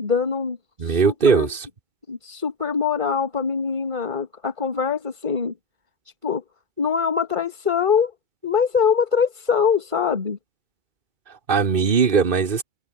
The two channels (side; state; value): left; late; 2.5 ms